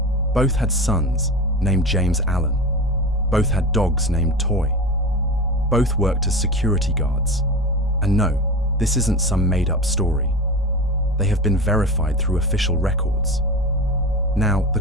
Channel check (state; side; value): normal; both; correlation 0.28